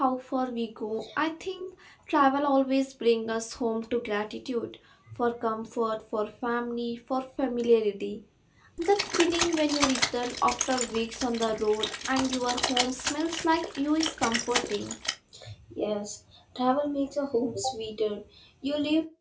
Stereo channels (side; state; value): both; identical; correlation 1.00